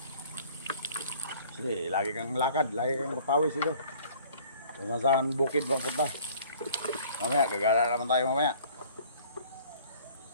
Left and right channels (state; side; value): inverted; both; correlation -0.53